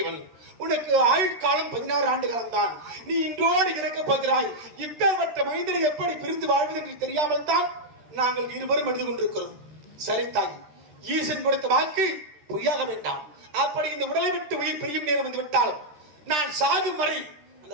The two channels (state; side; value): late; left; 13 ms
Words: உனக்கு ஆயுட்காலம் 16 ஆண்டு காலம் தான். நீ இன்றோடு இறக்க போகிறாய். இப்பேற்பட்ட மைந்தனை எப்படி பிரிந்து வாழ்வது என்று தெரியாமல் தான் நாங்கள் இருவரும் எழுதி கொண்டிருக்கிறோம். சரி தாய், ஈசன் கொடுத்த வாக்கு பொய்யாக வேண்டாம். அப்படி இந்த உடலை விட்டு உயிர் பிரியும் நேரம் வந்து விட்டால் நான் சாகும் வரை அந்த